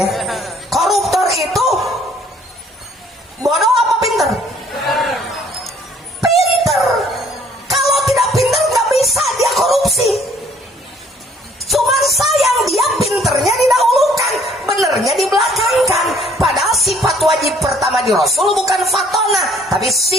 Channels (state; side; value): normal; both; correlation 0.60